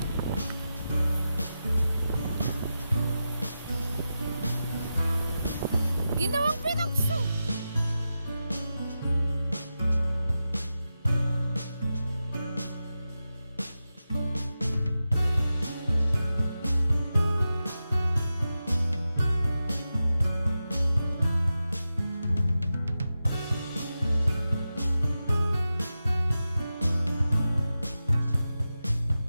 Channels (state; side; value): inverted; both; correlation -0.91